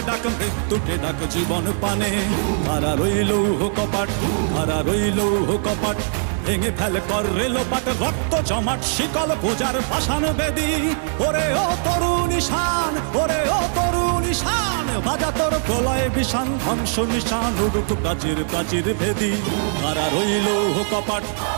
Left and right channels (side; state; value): left; silent; digital silence